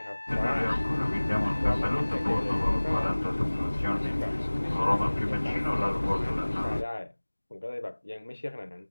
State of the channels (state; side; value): inverted; both; correlation -1.00